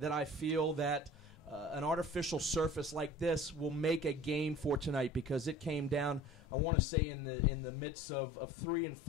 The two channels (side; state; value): right; drops out; at 6.4 s